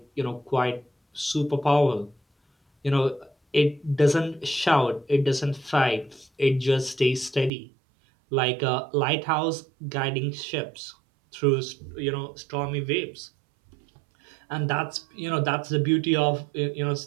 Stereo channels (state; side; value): drops out; left; at 7.5 s